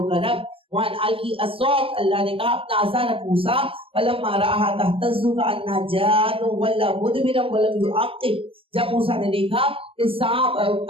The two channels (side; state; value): left; late; 0.26 ms